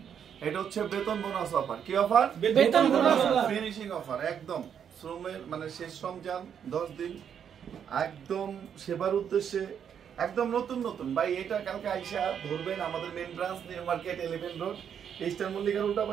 এটা হচ্ছে বেতন বোনাস অফার। কি অফার? বেতন বোনাস অফার, ফিনিশিং অফার। একদম শ্রমের মানে শেষ রমজান 10 দিন একদম সেবার উদ্দেশ্যে একদম নতুন নতুন ভাই। এটা কালকে আইসা ধরবেন আমাদের main branch new market 11 road eastern মল্লিকার উল্টা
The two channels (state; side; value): quieter; left; 8.2 dB